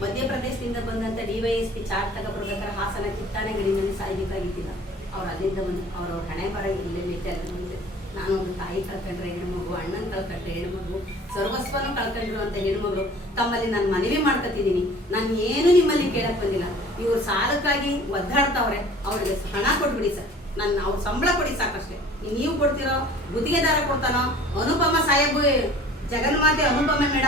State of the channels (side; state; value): both; normal; correlation 0.47